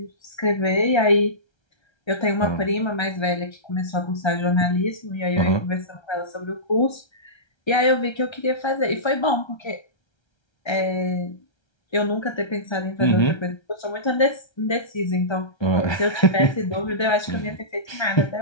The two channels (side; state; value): right; late; 1.3 ms